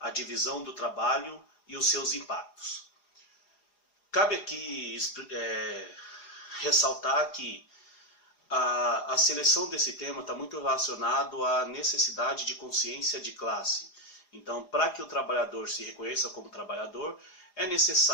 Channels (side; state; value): right; late; 4.9 ms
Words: divisão do trabalho e os seus impactos. Cabe aqui ressaltar que a seleção desse tema está muito relacionado à necessidade de consciência de classe. Então, para que o trabalhador se reconheça como trabalhador, é